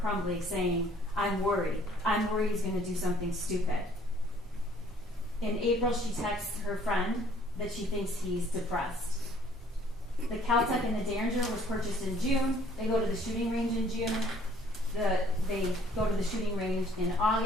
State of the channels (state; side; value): normal; both; correlation 0.59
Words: saying, I'm worried. I'm worried he's going to do something stupid. In April, she texts her friend that she thinks he's depressed. The Caltech and the Derringer was purchased in June. They go to the shooting range in June. They go to the shooting range in